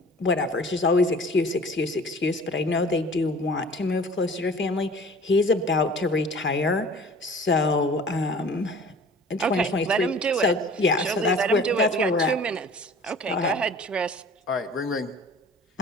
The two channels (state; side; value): normal; both; correlation 0.46